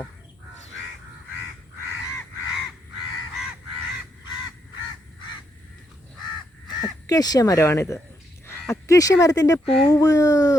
അക്കേഷ്യ മരമാണിത്. അക്കേഷ്യ മരത്തിൻ്റെ പൂവ്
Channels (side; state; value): both; normal; correlation 0.78